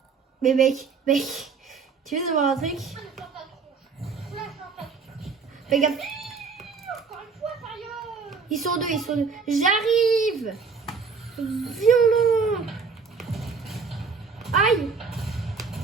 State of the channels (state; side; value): quieter; left; 5.2 dB